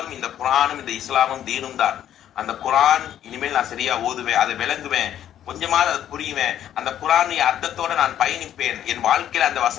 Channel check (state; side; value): quieter; right; 10.9 dB